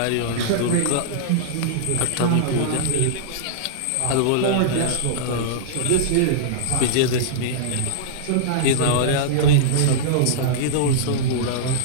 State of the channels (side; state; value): both; different; correlation -0.02